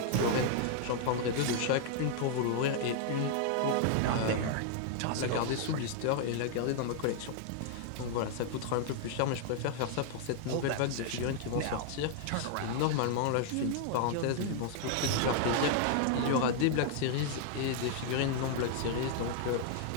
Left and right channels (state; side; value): different; both; correlation 0.00